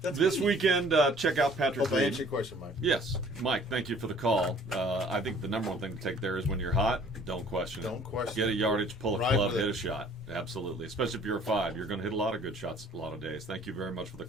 This weekend, check out Patrick Hope I Reed. answered your question, Mike. Yes. Mike, thank you for the call. I think the number one thing to take there is when you're hot, don't question it. Don't question Get a it. yardage, pull a Ride club, with hit it. a shot. Absolutely. Especially if you're a 5. You're going to hit a lot of good shots a lot of days. Thank you very much for the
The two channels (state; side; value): normal; both; correlation 0.54